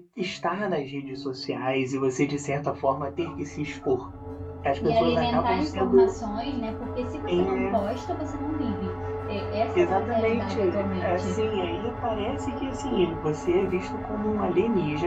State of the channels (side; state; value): both; identical; correlation 1.00